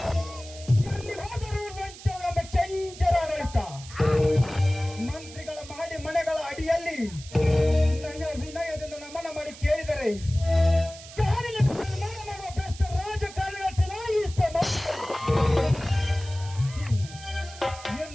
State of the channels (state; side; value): noise; right; hiss, 16 dB below the sound